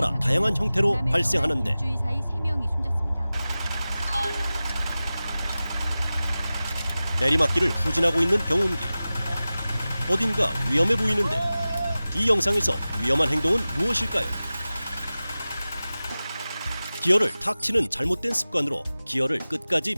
다양한 형태로 발생하는데 일주일 사이 3명이 숨졌습니다. 내리막길을 후진하고 있는 경운기. 어딘가 위험해 보이는데 이 영상에서 위험한 행동은 무엇일까요? 기어를 탁 치는 잘못된 습관으로 기어를 끝까지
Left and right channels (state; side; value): inverted; both; correlation -0.96